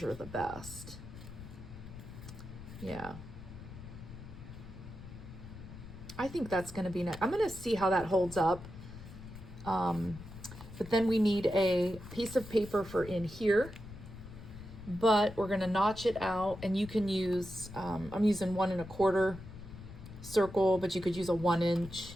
the best. Yeah. I think that's going to be nice. I'm going to see how that holds up. But then we need a piece of paper for in here. But we're going to notch it out. And you can use, I'm using 1 1/4 circle, but you could use a 1 inch.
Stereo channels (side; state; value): left; noise; rumble, 14 dB below the sound